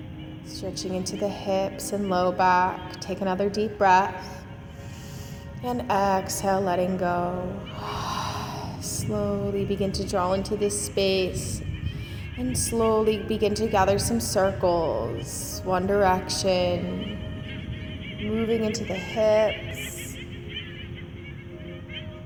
Stretching into the hips and low back. Take another deep breath. And exhale, letting go. Slowly begin to draw into this space. And slowly begin to gather some circles, one direction, moving into the hips.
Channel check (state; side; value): identical; both; correlation 1.00